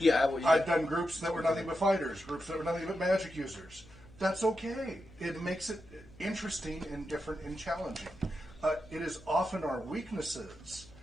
I've done groups that were nothing but fighters, groups that were nothing but magic users. That's okay. It makes it interesting and different and challenging. It is often our weaknesses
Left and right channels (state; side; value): noise; left; hum, 23 dB below the sound